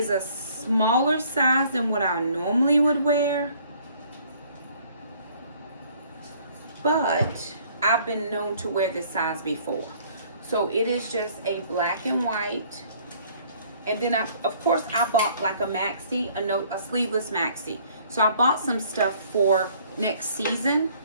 a smaller size than what I normally would wear. But I've been known to wear this size before. So it is just a black and white. And then of course I bought like a maxi, a sleeveless maxi. So I bought some stuff for next season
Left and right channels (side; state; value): both; inverted; correlation -0.58